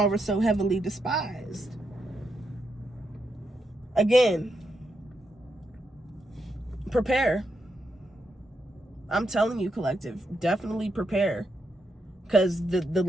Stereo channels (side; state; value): both; normal; correlation 0.83